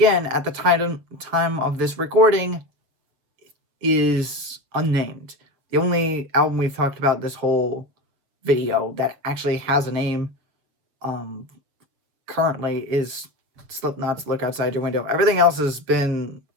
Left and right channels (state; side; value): late; left; 7.4 ms